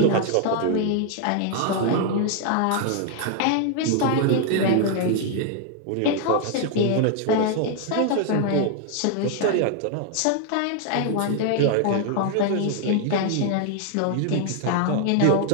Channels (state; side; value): different; both; correlation 0.00